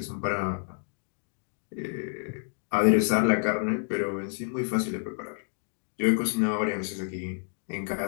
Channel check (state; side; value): silent; right; 59 dB below the other